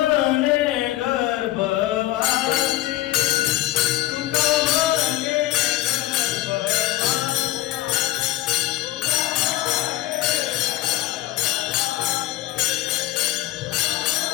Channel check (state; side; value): quieter; right; 15.6 dB